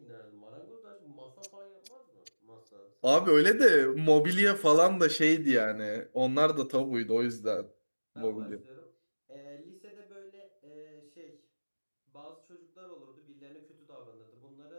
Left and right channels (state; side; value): inverted; both; correlation -1.00